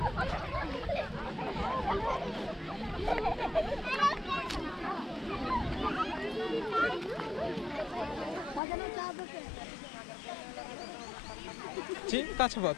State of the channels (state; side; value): drops out; right; at 8.6 s